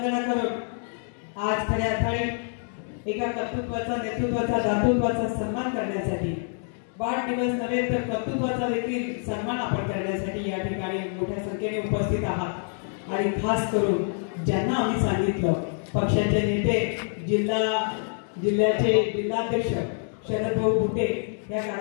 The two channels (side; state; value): right; silent; 57 dB below the other